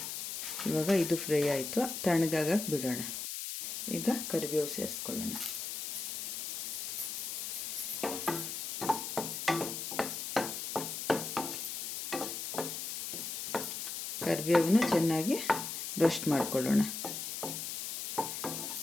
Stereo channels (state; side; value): noise; left; hiss, 4 dB below the sound